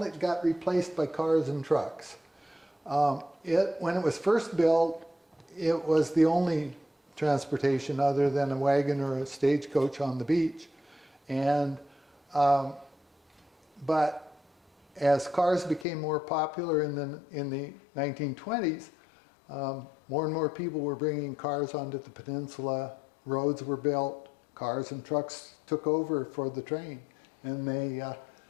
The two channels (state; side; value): drops out; right; at 15.9 s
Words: it got replaced by cars and trucks. When it was first built, it was the only transportation other than a wagon or a stagecoach on the beach. But as cars became more popular in the 1920s, more and more people were bringing cars onto the peninsula. Roads were built, cars and trucks took over for the train, and they